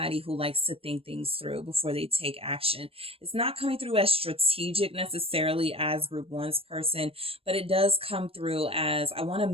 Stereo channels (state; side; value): late; left; 0.28 ms